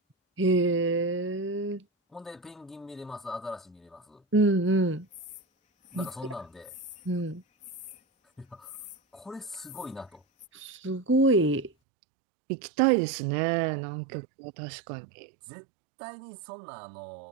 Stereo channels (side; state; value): left; drops out; at 11.7 s